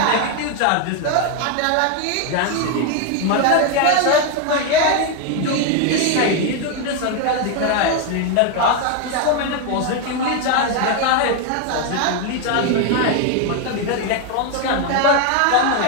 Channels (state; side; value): different; both; correlation 0.01